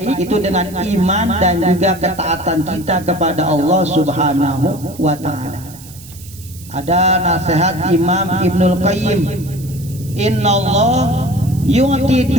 itu dengan iman dan juga ketaatan kita kepada Allah Subhanahu wa ta'ala. Ada nasihat Imam Ibnul Qayyim, innallah yu'ti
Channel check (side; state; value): right; noise; hiss, 19 dB below the sound